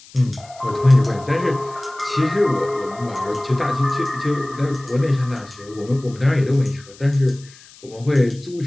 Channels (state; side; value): noise; left; hiss, 23 dB below the sound